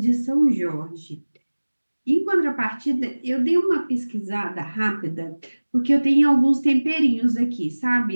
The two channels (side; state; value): both; inverted; correlation -1.00